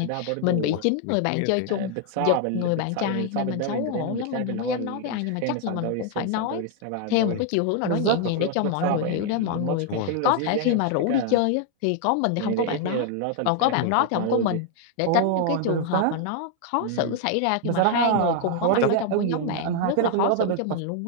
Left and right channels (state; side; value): different; both; correlation 0.00